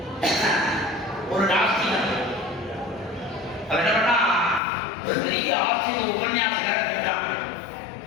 ஒரு நாஸ்திகன் அவர் என்ன பண்ணா, ஒரு பெரிய ஆஸ்திக உபன்யாசகரை கேட்டான்.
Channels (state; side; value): drops out; right; at 4.6 s